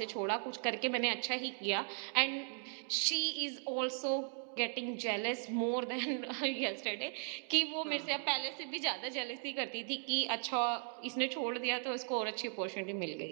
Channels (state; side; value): silent; left; 53 dB below the other